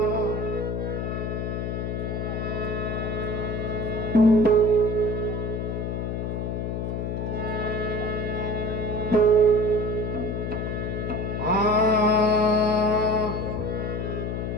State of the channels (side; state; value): left; noise; hum, 2 dB below the sound